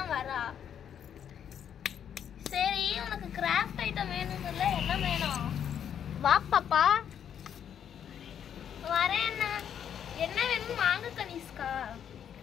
வரா. சரி உனக்கு கிராஃப்ட் ஐட்டம் வேணும் இல்லை? என்ன வேணும்? வா பாப்பா. வரேன். என்ன வேணும் வாங்க கனிஷ்கா.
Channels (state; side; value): quieter; right; 8.8 dB